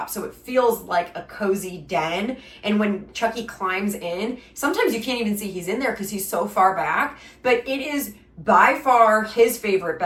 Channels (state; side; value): identical; both; correlation 1.00